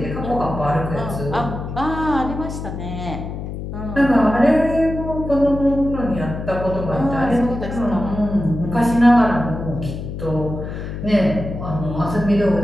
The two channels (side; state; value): left; noise; hum, 7 dB below the sound